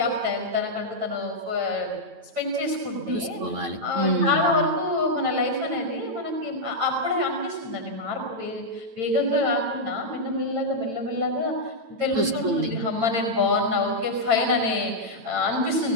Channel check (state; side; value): late; left; 8.9 ms